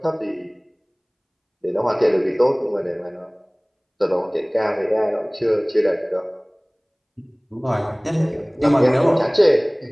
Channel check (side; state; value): both; identical; correlation 1.00